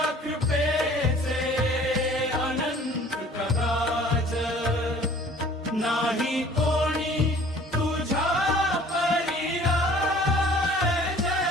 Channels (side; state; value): both; normal; correlation 0.51